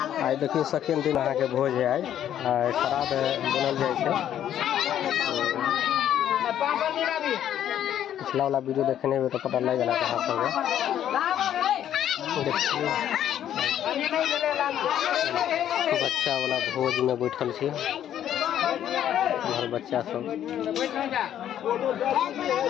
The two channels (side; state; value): right; quieter; 10.7 dB